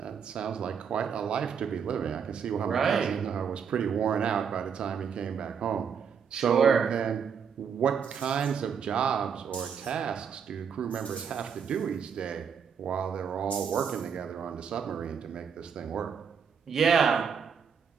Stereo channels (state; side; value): quieter; left; 7.0 dB